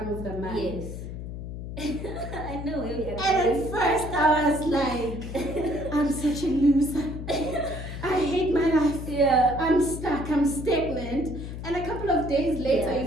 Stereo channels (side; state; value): left; noise; hum, 8 dB below the sound